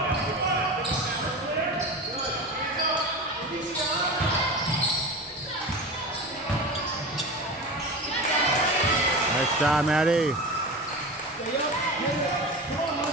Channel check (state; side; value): normal; both; correlation 0.29